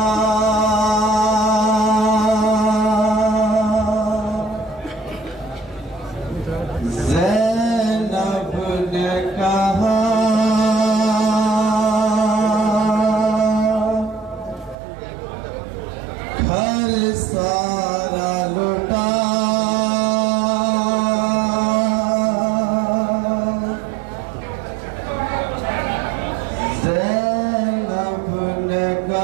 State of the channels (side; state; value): left; drops out; at 14.8 s